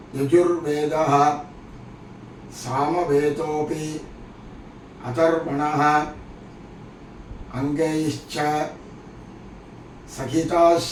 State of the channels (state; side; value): identical; both; correlation 1.00